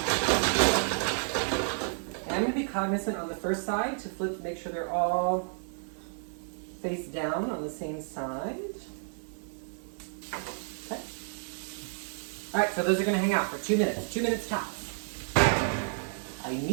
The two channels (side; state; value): left; silent; digital silence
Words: And I'm going to be cognizant on the first side to flip to make sure they're all face down on the same side. Okay. Alright, so those are going to hang out for 2 minutes. 2 minutes tops. I